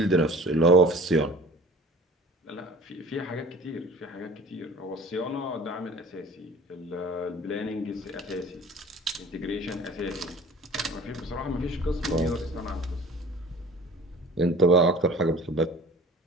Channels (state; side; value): normal; both; correlation 0.44